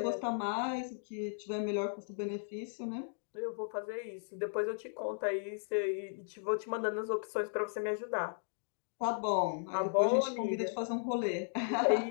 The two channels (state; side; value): silent; right; digital silence